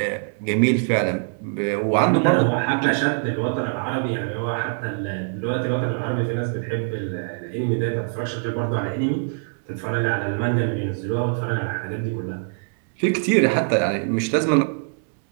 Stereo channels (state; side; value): silent; left; digital silence